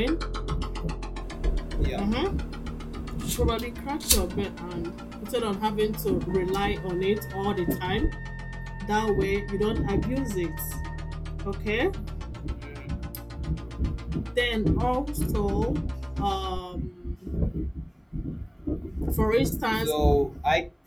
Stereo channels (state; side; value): identical; both; correlation 1.00